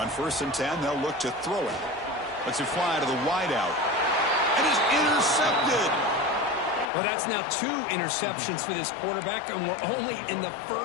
1st and 10, they'll look to throw it. Lets it fly to the wideout. And is intercepted. Well, that's now 2 interceptions for this quarterback, and we're only in the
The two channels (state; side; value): drops out; right; at 6.9 s